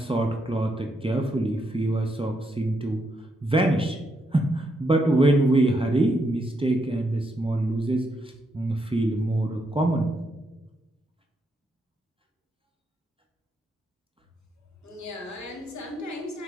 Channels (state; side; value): normal; both; correlation 0.79